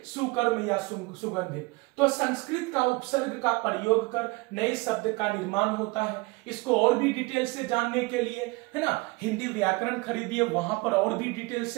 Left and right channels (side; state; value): left; quieter; 25.4 dB